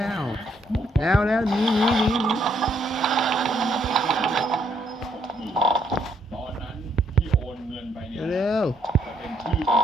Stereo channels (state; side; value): normal; both; correlation 0.71